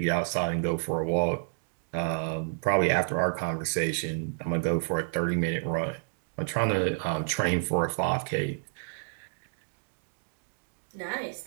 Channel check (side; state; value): left; silent; digital silence